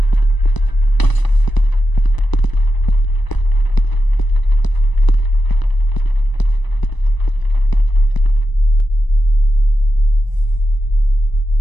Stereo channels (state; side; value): late; right; 1.0 ms